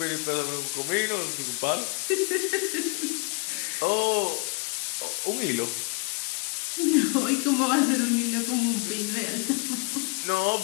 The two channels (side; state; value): right; quieter; 33.1 dB